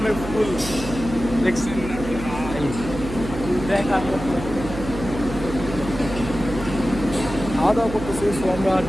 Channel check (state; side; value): noise; right; hum, 9 dB below the sound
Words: ফুল দেখছেন না ভাই, দেখার মতো। খাওয়া দাওয়া করতেছে, সো আমরা